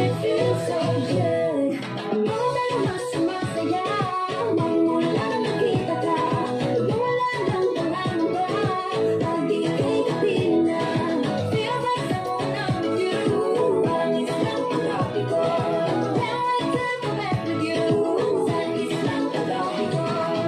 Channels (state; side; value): identical; both; correlation 1.00